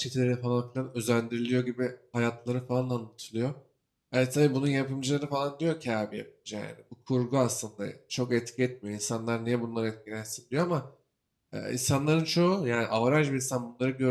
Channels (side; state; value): both; identical; correlation 1.00